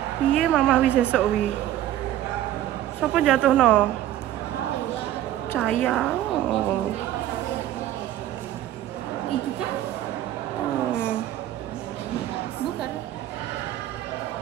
Iya Mama Awis esok wi. Sopo jatuh no? Caya. Oh. Iki kan? Bukan.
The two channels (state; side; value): quieter; left; 12.8 dB